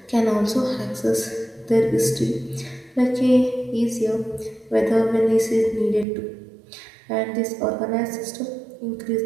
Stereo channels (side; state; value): left; drops out; at 6.1 s